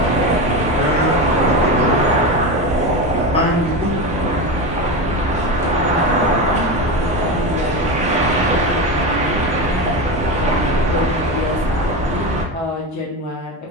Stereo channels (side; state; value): both; normal; correlation 0.19